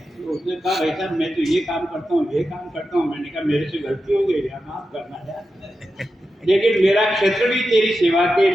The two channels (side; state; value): both; normal; correlation 0.90